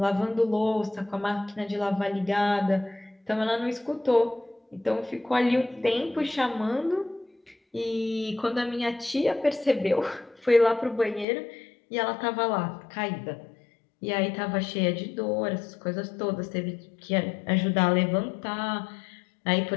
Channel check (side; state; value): right; drops out; at 11.2 s